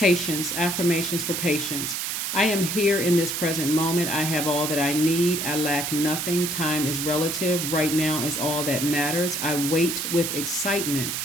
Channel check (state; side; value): noise; right; hiss, 2 dB below the sound